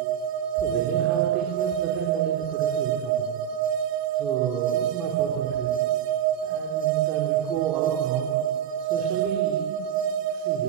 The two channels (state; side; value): quieter; left; 9.9 dB